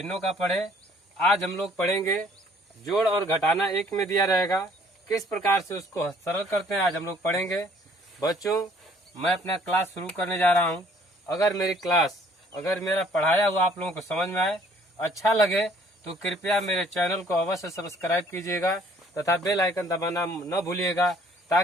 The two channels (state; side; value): normal; both; correlation 0.59